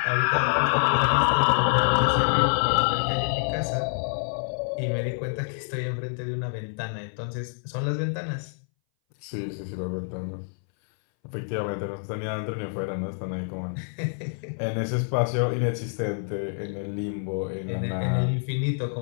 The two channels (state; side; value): silent; right; 60 dB below the other